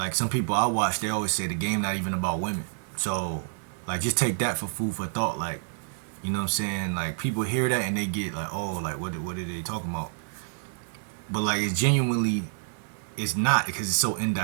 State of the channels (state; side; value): silent; left; 59 dB below the other